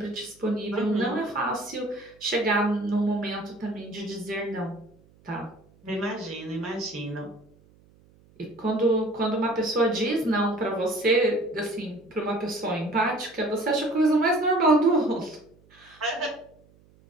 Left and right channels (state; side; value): noise; right; hum, 29 dB below the sound